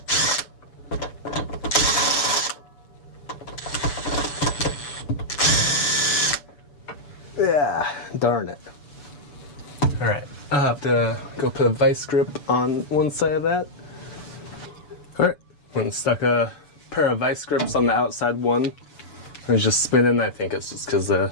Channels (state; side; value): late; right; 6.9 ms